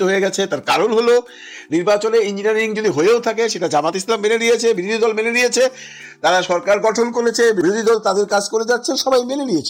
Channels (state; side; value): identical; both; correlation 1.00